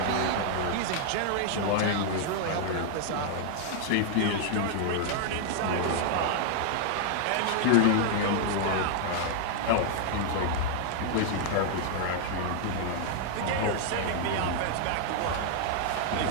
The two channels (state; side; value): different; both; correlation 0.00